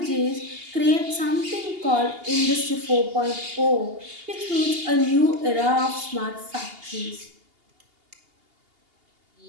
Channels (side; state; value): left; late; 2.8 ms